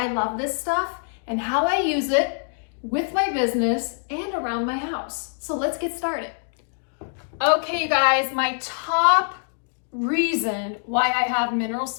love this stuff and how I use it with my business and around my house. So let's get started. Okay, you guys, my top reason why I have mineral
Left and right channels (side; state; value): right; silent; digital silence